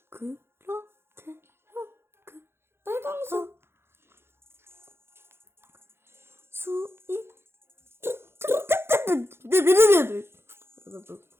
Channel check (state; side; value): late; left; 0.12 ms